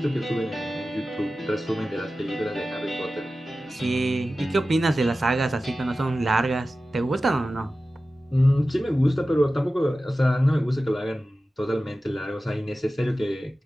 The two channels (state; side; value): normal; both; correlation 0.95